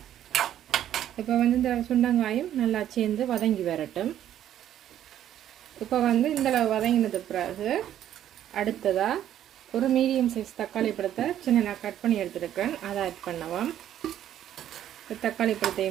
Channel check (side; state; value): left; quieter; 11.2 dB